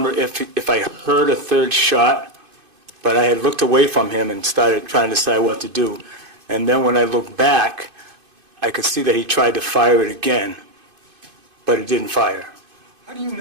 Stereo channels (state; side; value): late; left; 2.5 ms